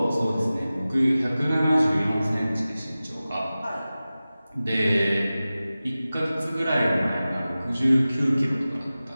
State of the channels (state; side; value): inverted; both; correlation -0.96